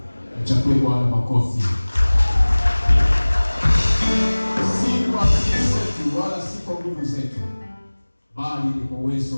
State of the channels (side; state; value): both; inverted; correlation -1.00